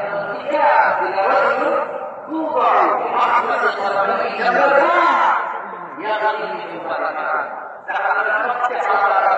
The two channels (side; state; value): both; identical; correlation 1.00